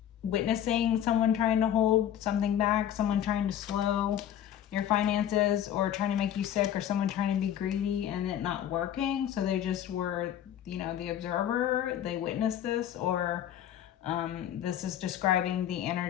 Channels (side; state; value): right; quieter; 10.5 dB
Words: witnessing someone trying to hold something back, someone trying to slow your finances or trying to make you sick, or someone trying to be greedy and it not working. So they just were, you know, the observer. They witnessed this, or this is describing the